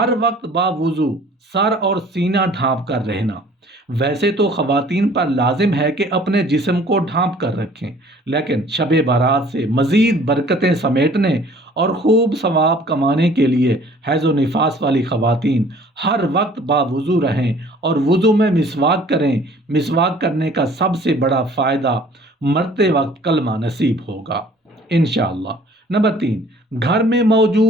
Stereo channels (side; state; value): both; normal; correlation 0.53